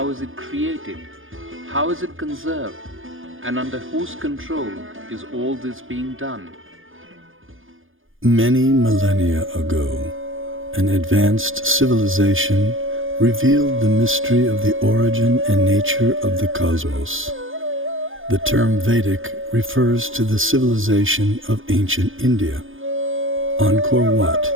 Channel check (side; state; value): left; late; 0.59 ms